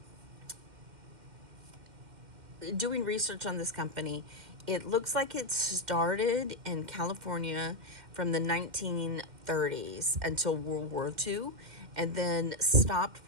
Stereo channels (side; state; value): left; late; 2.1 ms